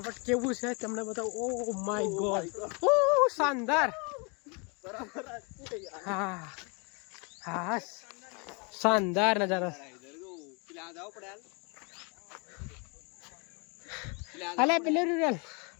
કેવું છે તમને બતાવું. ઓ માય ગોડ, ઓ શાનદાર. હા હા, શાનદાર નજારો. અલે પેલું રૂરલ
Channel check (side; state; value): right; quieter; 32.6 dB